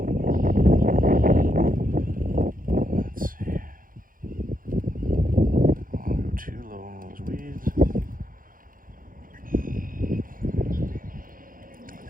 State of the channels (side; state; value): left; late; 0.40 ms